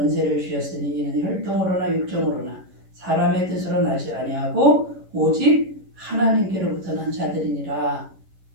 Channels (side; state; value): left; late; 11 ms